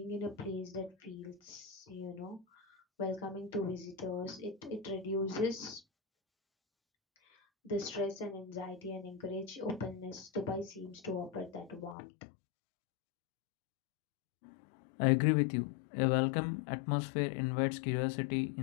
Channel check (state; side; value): drops out; right; at 12.0 s